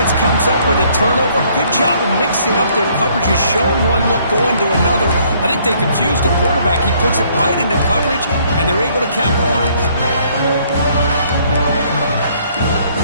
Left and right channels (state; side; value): inverted; both; correlation -0.64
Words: comes up with a turnover. Good job of mixing up their coverages, showing one look, going to another. I think they confused the quarterback. He puts it right into coverage, and they're able to capitalize.